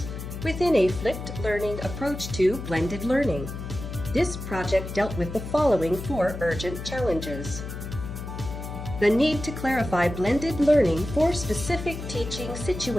within a flipped learning approach to blended learning. This project dealt with the following 4 urgent challenges. The need to clarify blended learning for specific teaching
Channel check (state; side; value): noise; left; hum, 8 dB below the sound